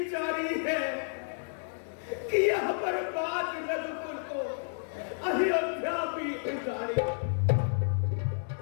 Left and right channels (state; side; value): silent; right; digital silence